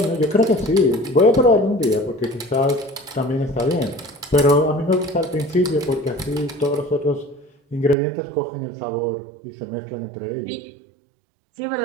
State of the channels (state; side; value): drops out; left; at 8.0 s